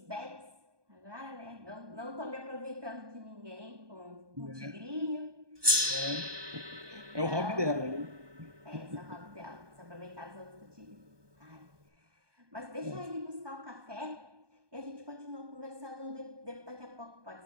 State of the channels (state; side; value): late; left; 1.2 ms